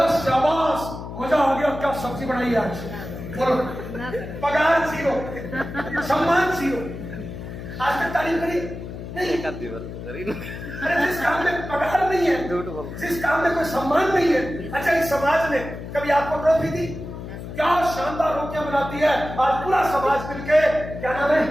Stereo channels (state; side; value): noise; left; hum, 10 dB below the sound